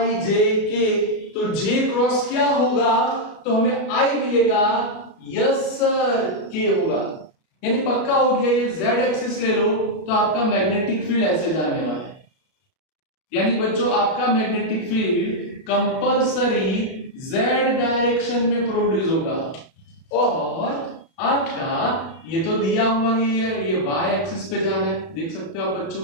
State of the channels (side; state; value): right; late; 33 ms